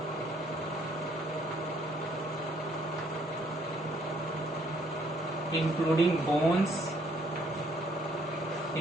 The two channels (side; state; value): both; normal; correlation 0.66